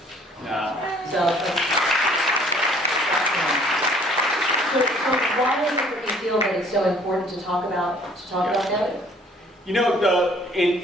So why is it that you feel that it's so important to talk about failure? You know,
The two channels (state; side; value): normal; both; correlation 0.58